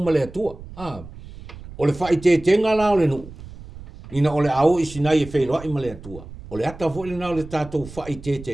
ma le atua. O le whai te tenga la o le nuu. Ina o le au i Sinai e wheiroa i ma le atua. O le ata fo le na o le tātou whai te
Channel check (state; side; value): noise; right; rumble, 16 dB below the sound